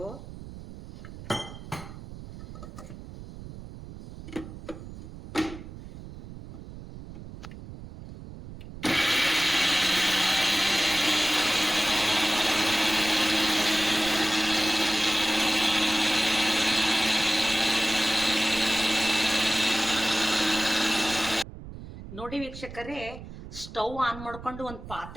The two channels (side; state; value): right; noise; rumble, 13 dB below the sound